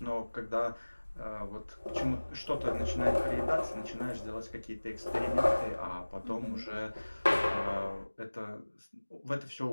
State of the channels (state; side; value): inverted; both; correlation -1.00